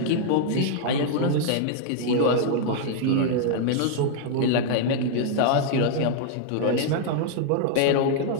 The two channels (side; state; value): both; different; correlation -0.01